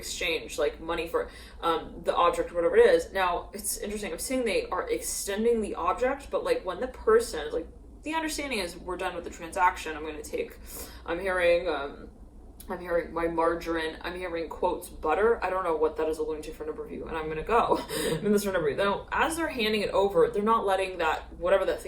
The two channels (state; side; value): identical; both; correlation 1.00